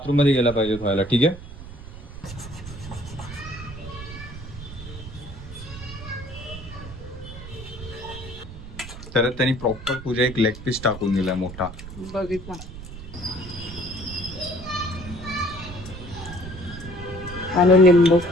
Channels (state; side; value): noise; right; rumble, 12 dB below the sound